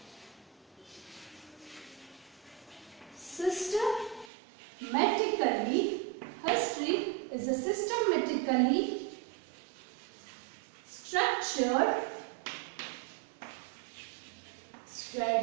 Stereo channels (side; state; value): left; drops out; at 4.3 s